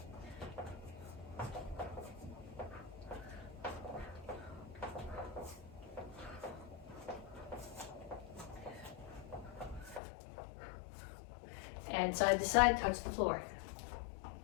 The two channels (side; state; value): right; drops out; at 10.0 s